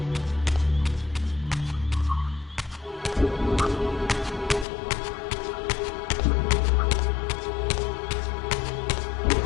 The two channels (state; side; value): drops out; right; at 4.7 s